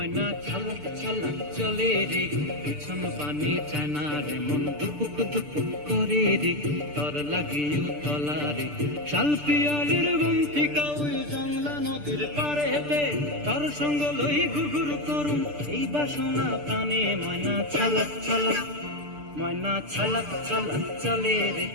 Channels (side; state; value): left; late; 6.8 ms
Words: ছালাক ছালাক চলে রে, পিছন পানে চায় না রে, মন দুপুক দুপুক করে রে, তর লাগিও তলা রে। শাল পিয়ালির বন্তিকা ওই জংলা নদীর পারে হেতে, তর সঙ্গ লই ঘুরঘুর করুম এই বাসনা প্রাণে। ময়না ছালাক ছালাক, ময়না ছালাক ছালাক চলে রে,